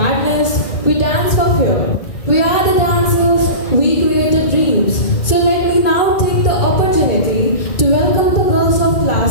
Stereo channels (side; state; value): right; late; 2.3 ms